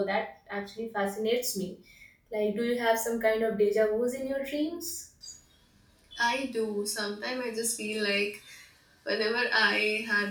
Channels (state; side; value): identical; both; correlation 1.00